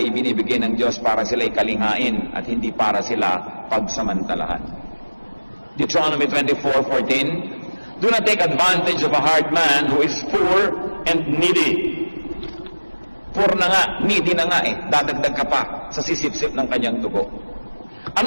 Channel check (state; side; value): inverted; both; correlation -1.00